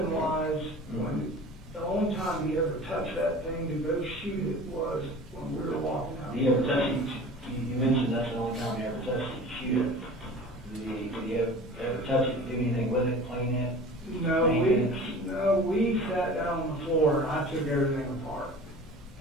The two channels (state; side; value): normal; both; correlation 0.40